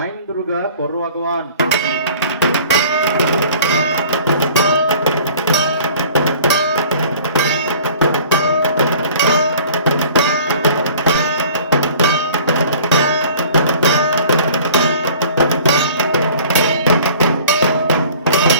দুর্গা করো আগওয়ান।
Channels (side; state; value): both; inverted; correlation -0.49